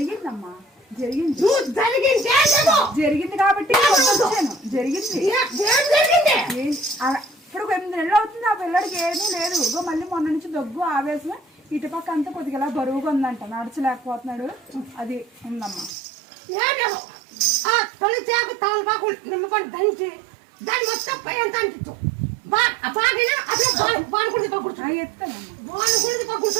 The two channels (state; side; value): drops out; left; at 16.0 s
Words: జరిగింది కాబట్టి వచ్చాను. జరిగింది ఇప్పుడు 8 నెలలు అవుతుంది. ఆ పిల్లడికి ఏమీ లేదు. మళ్ళీ మొన్న నుంచి దగ్గు, ఆవేశం, ఇటుపక్క అంతా కొద్దిగా ఇలా బరువుగా ఉందంట, నడచలేకపోతున్నాడు. అది ఉందమ్మా. తొలి చేకు తమలపాకు నిమ్మకొని దంచి దాన్ని మొత్తం పై అంతా అంటించు.